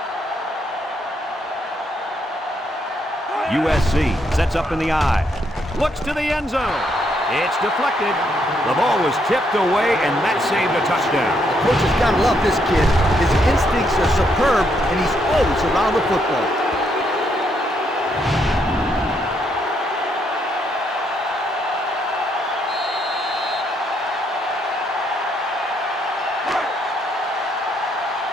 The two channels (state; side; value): normal; both; correlation 0.75